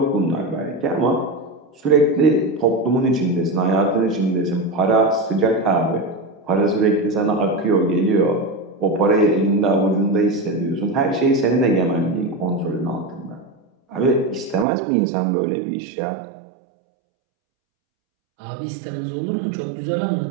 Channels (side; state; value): left; drops out; at 14.7 s